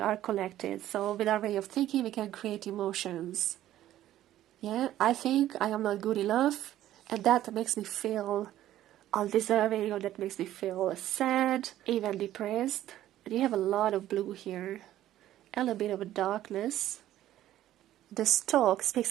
connected. So with our way of thinking, we can create emotions. Yeah, I think I am not good enough. And that makes me feel undeserving, or that makes me feel sad, even depressed. And you have a lot of blue here. And a bit of a darkness. The stalk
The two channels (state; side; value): quieter; left; 13.2 dB